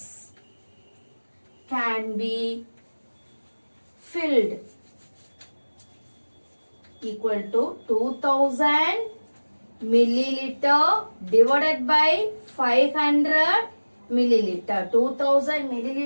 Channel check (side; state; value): both; inverted; correlation -1.00